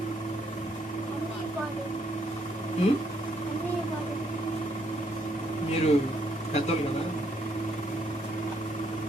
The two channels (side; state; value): both; normal; correlation 0.71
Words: మీరు పెద్దోళ్ళు కదా.